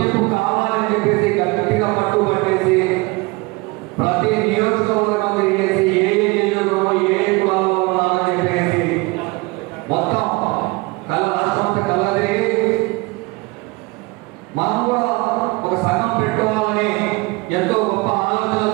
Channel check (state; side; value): quieter; left; 25.2 dB